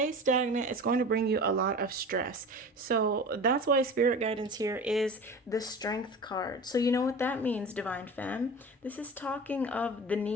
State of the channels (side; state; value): both; normal; correlation 0.34